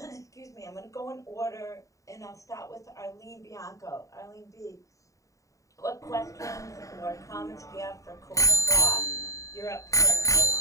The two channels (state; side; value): late; right; 0.16 ms